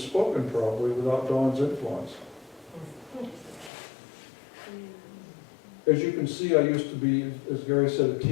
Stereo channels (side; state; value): right; drops out; at 3.7 s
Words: probably without Dawn's influence. As you can see, I used to be, as Gary said, a